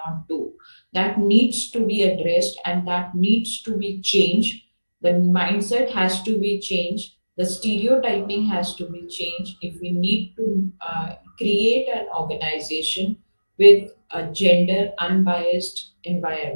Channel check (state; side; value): inverted; both; correlation -1.00